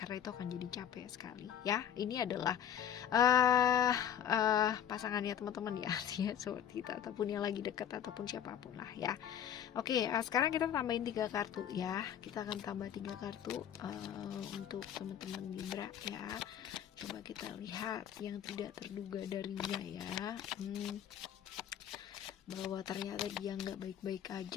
itu akan jadi capek sekali ya. Ini adalah pasangannya teman-teman ya, seperti kita, ataupun yang lagi dekat, ataupun siapapun lah ya. Oke, sekarang kita tambahin 3 kartu ya. Kita akan tambah 3 kartu untuk teman-teman Libra ya. Coba kita lihat yang tidak terduga darinya ya. Bahwa ternyata dia nggak baik-baik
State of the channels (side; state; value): right; quieter; 9.4 dB